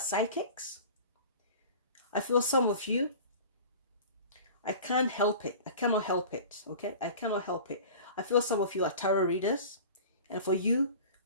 I feel some of you, I can't help it. I cannot help it. Okay? I cannot help it. I feel some of you are tarot readers. And for you,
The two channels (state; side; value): inverted; both; correlation -0.39